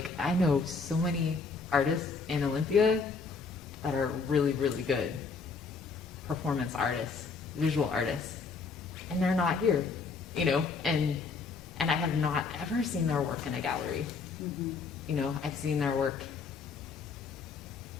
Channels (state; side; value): quieter; right; 4.7 dB